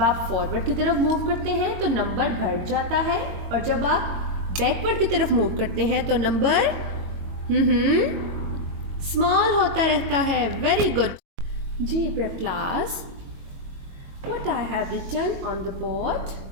आप फॉरवर्ड की तरफ मूव करते हैं तो नंबर बढ़ जाता है, और जब आप बैकवर्ड की तरफ मूव करते हैं तो नंबर स्मॉल होता रहता है. Very good. JEE prep class, what I have written on the board,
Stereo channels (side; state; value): left; late; 22 ms